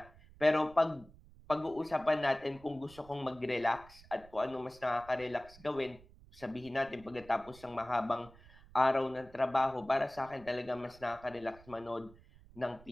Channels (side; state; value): right; noise; rumble, 23 dB below the sound